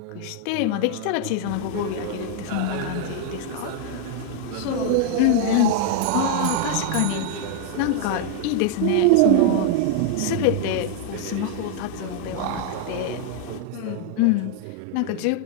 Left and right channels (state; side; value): different; both; correlation 0.00